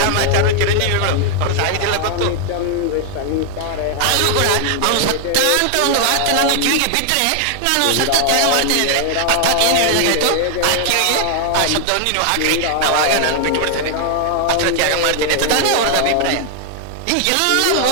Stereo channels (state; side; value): different; both; correlation 0.00